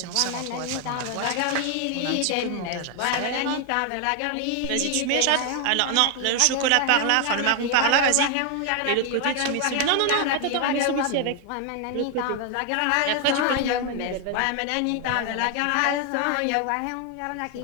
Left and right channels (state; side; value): different; both; correlation 0.00